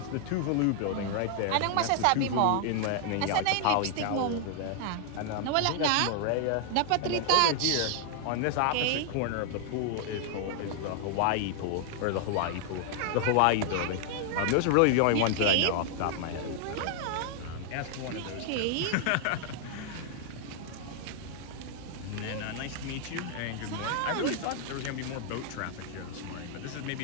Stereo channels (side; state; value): both; different; correlation 0.00